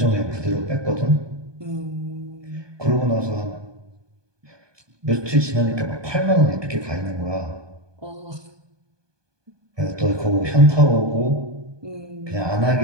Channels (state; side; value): late; left; 1.2 ms